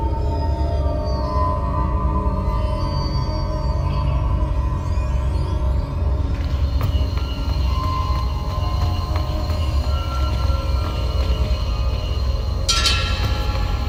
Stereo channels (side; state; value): both; identical; correlation 1.00